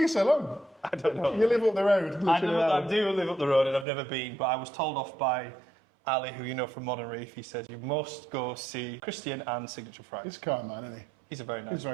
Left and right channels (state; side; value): drops out; left; at 3.9 s